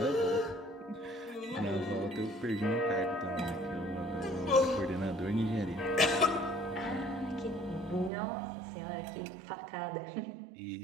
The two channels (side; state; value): left; drops out; at 8.1 s